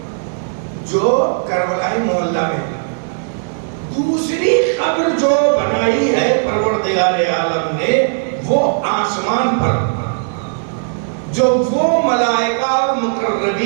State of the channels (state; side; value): silent; left; 64 dB below the other